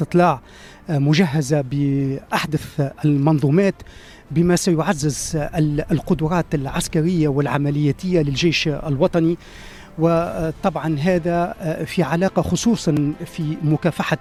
مجهزة بأحدث المنظومات بما سيعزز القدرات العسكرية والعملياتية للجيش الوطني. وطبعا هذا في علاقة خصوصا في مكافحة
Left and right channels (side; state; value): both; identical; correlation 1.00